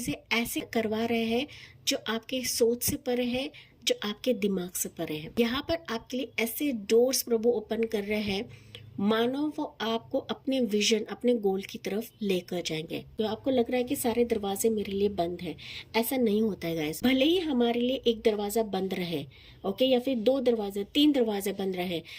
ऐसे करवा रहे हैं जो आपके सोच से परे है, जो आपके दिमाग से परे है। यहाँ पर आपके लिए ऐसे डोर्स प्रभु ओपन कर रहे हैं मानो वो आपको अपने विजन, अपने गोल की तरफ लेकर जाएंगे। तो आपको लग रहा है कि सारे दरवाजे मेरे लिए बंद है, ऐसा नहीं होता है गाइस। भले ही हमारे लिए एक दरवाजा बंद रहे, ओके, या फिर 2 दरवाजे, 3 दरवाजे बंद रहे,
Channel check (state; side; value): identical; both; correlation 1.00